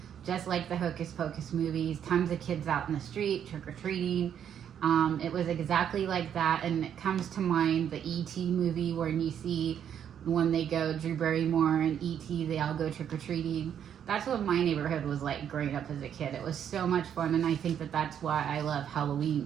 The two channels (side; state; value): left; quieter; 9.0 dB